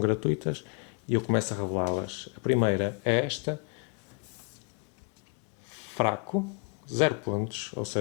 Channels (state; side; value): quieter; right; 34.2 dB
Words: E eu começo a revelá-las. A primeira é esta. Fraco, 0 pontos, ou